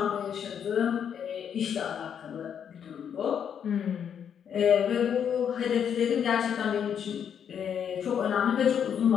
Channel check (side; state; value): right; quieter; 8.2 dB